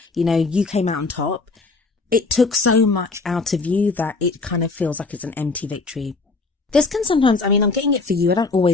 you came out on top, it took so much out of you that it kind of feels like it's an empty victory. This can sometimes, I'm getting it for you. I don't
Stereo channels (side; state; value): right; quieter; 3.8 dB